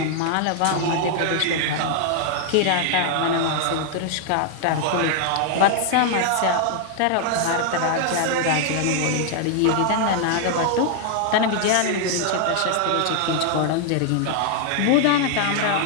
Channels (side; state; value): both; different; correlation 0.00